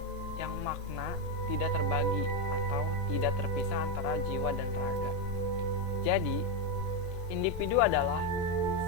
yang makna tidak terbagi atau tidak terpisah antara jiwa dan raga. Jadi, individu adalah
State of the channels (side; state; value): left; late; 1.7 ms